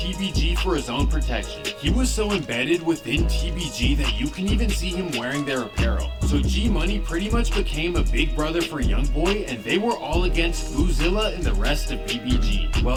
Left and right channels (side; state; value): both; identical; correlation 1.00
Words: for his own protection. He was so embedded within TBG that you can even see him wearing their apparel. So G Money pretty much became a big brother for YoungBoy, and they were all against Boozilla and the rest of BBG.